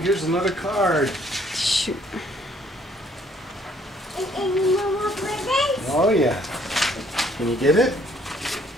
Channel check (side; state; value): both; normal; correlation 0.63